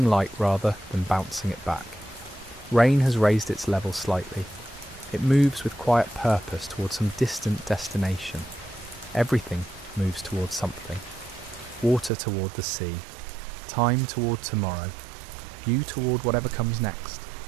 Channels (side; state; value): left; drops out; at 12.1 s